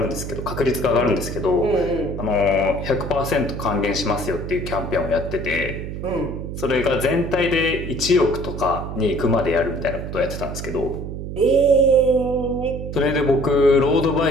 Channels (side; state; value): right; noise; hum, 7 dB below the sound